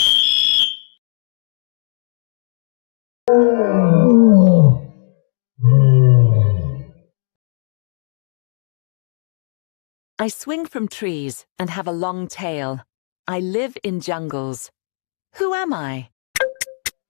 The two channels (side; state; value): right; silent; digital silence